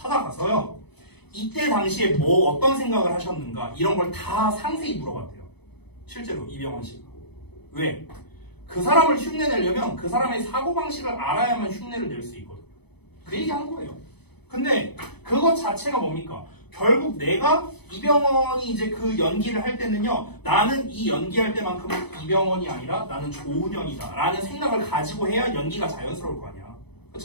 이때 당시에 뭐 어떤 생각을 하셨는가 이런 걸 다 상세히 물어봤대요. 실제로 이병헌 씨가. 왜? 그 사람을 흉내내려면 그 사람의 사고방식을 알아야만 흉내를 낼 수 있거든. 그 얘기 한 거예요. 근데 그것 자체가 뭡니까? 결국 내가 이병헌이 이제 그 연기를 할 때는요, 나는 이 연기할 때만큼은 이병헌이 아니라 나는 조은현이다 라는 생각을 가지고 해야 연기가 자연스러울 거 아니야.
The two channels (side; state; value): right; late; 0.98 ms